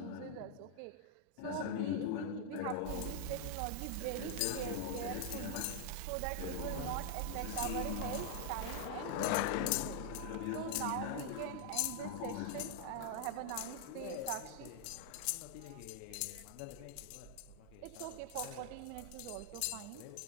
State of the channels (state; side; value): different; both; correlation 0.00